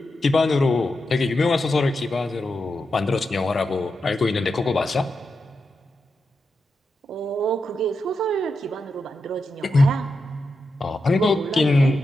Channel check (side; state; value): both; normal; correlation 0.87